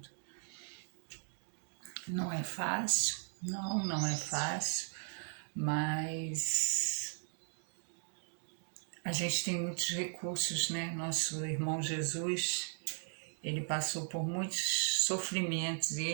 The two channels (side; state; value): left; silent; 53 dB below the other